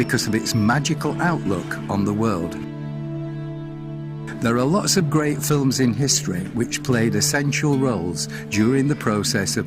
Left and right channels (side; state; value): both; identical; correlation 1.00